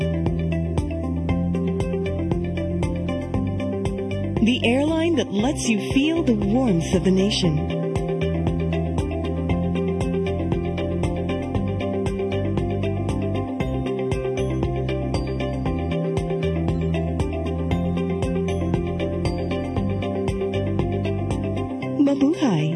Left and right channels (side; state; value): both; identical; correlation 1.00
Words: The airline that lets you feel the warmth of the nation. Mabuhay!